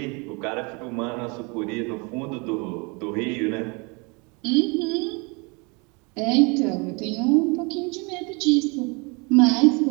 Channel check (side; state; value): left; quieter; 30.2 dB